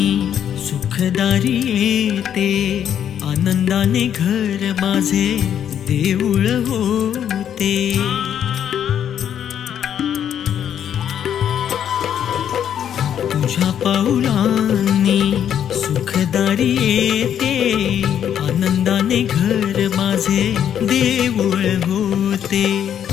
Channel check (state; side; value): quieter; right; 9.4 dB